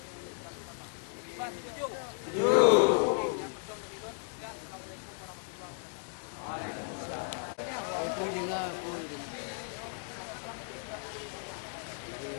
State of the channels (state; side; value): silent; right; 55 dB below the other